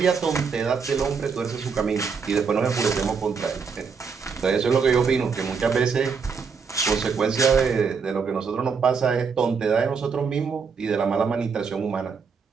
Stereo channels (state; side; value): quieter; left; 5.6 dB